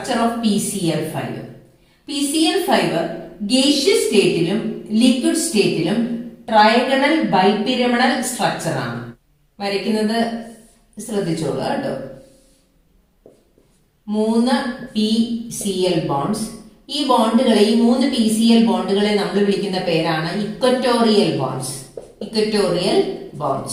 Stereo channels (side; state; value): both; identical; correlation 1.00